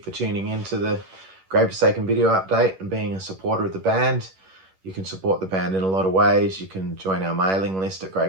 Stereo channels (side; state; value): left; late; 11 ms